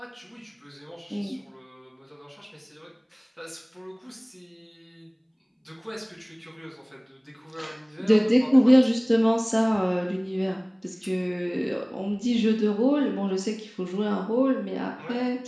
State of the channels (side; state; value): both; identical; correlation 1.00